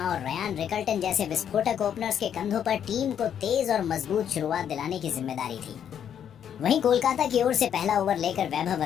और रयान रिकल्टन जैसे विस्फोटक ओपनर्स के कंधों पर टीम को तेज और मजबूत शुरुआत दिलाने की जिम्मेदारी थी। वहीं कोलकाता की ओर से पहला ओवर लेकर वैभव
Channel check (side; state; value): right; quieter; 9.0 dB